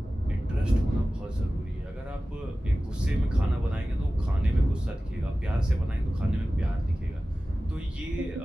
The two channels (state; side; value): normal; both; correlation 0.96